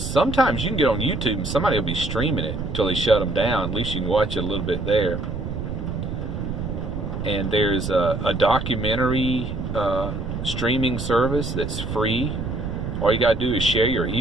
you can get on YouTube and somebody will be streaming it until they shut them down. At least you can watch it a little bit there. And there's a documentary streaming service that's free. All you got to do is share your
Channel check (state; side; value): noise; right; rumble, 6 dB below the sound